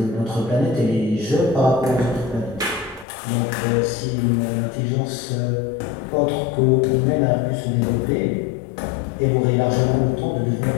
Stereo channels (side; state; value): right; drops out; at 3.1 s